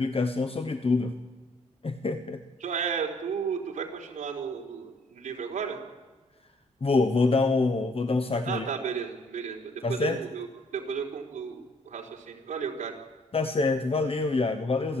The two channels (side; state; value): both; normal; correlation 0.64